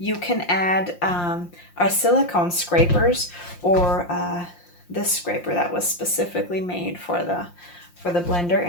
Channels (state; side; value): late; right; 5.7 ms